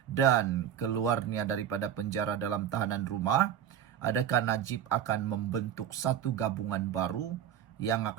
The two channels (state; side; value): quieter; left; 9.8 dB